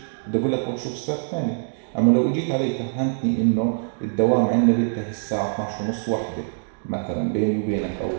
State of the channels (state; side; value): silent; left; digital silence